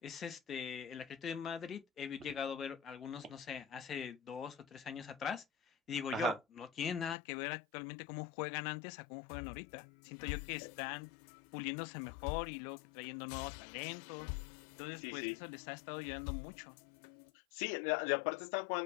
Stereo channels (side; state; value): right; drops out; at 7.2 s